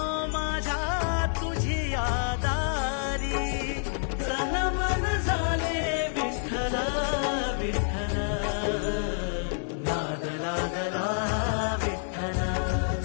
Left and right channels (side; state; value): right; silent; 59 dB below the other